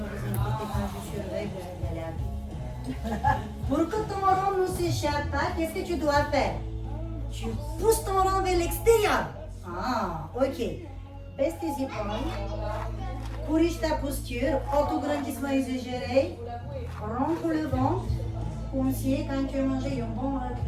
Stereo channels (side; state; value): both; identical; correlation 1.00